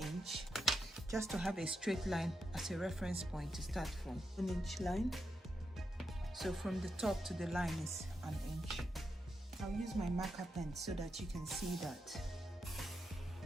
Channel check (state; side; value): normal; both; correlation 0.85